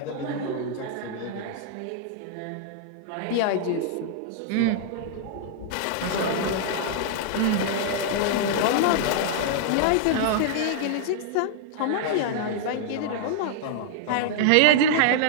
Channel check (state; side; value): different; both; correlation -0.01